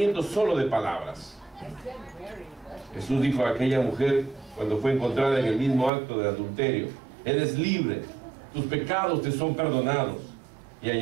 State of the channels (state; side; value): drops out; left; at 5.9 s